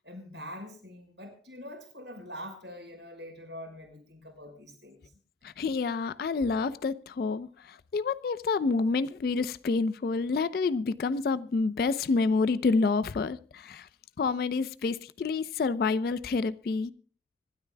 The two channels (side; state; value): right; quieter; 3.8 dB